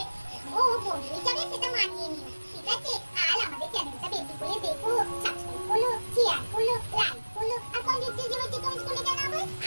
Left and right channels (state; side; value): inverted; both; correlation -1.00